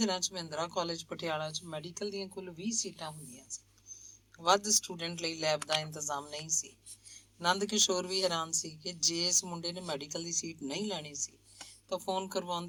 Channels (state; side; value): identical; both; correlation 1.00